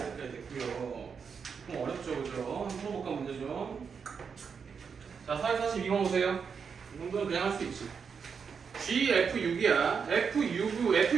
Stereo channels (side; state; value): left; quieter; 6.2 dB